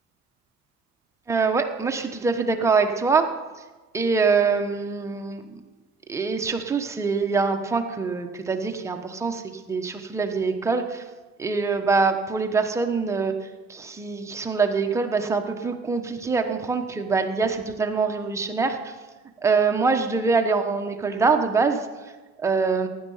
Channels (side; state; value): left; quieter; 4.3 dB